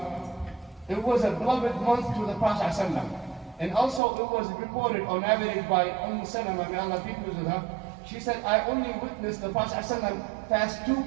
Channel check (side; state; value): left; drops out; at 4.0 s